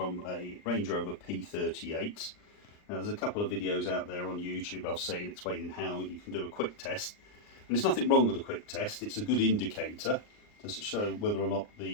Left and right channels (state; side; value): late; right; 39 ms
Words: a Range Rover P38. Now there's a couple of videos out there on YouTube I've seen explaining how you can do a quick test. And there's nothing wrong with a quick test, it's a good indicator to show whether or not